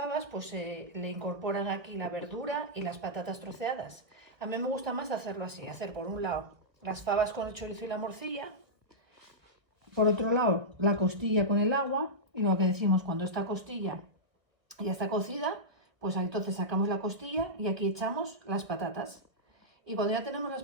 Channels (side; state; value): left; late; 1.4 ms